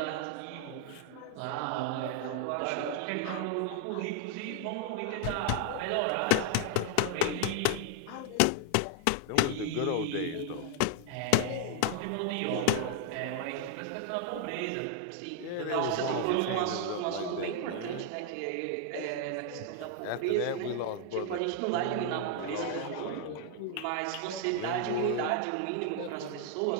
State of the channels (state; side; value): different; both; correlation 0.00